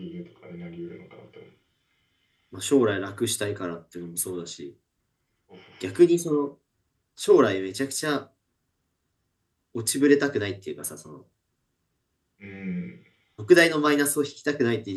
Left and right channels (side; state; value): both; identical; correlation 1.00